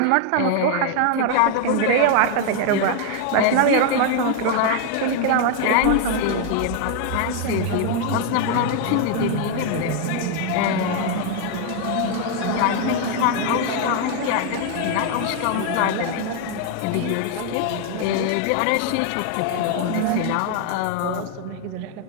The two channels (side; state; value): both; different; correlation 0.01